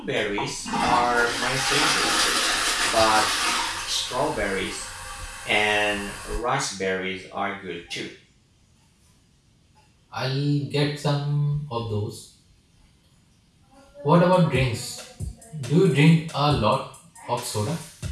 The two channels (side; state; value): both; identical; correlation 1.00